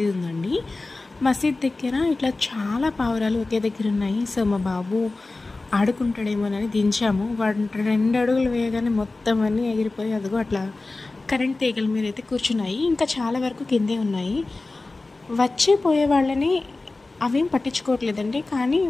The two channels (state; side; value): quieter; right; 3.3 dB